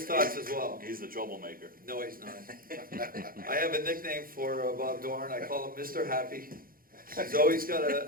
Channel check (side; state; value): left; late; 0.42 ms